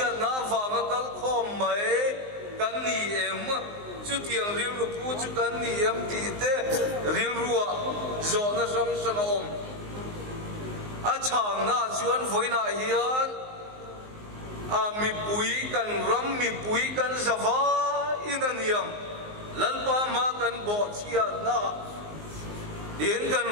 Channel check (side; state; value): left; late; 19 ms